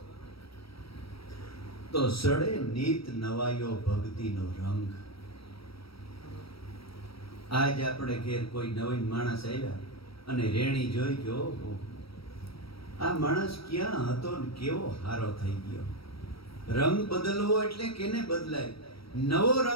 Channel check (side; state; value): right; late; 0.75 ms